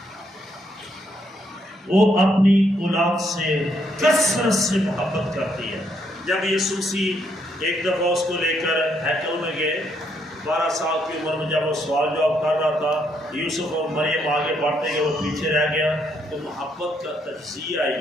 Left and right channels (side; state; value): both; normal; correlation 0.74